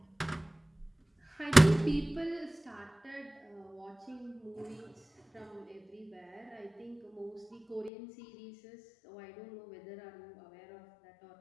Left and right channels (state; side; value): drops out; right; at 7.9 s